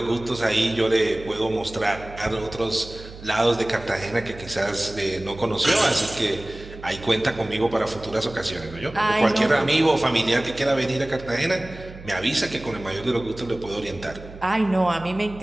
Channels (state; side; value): noise; right; hum, 16 dB below the sound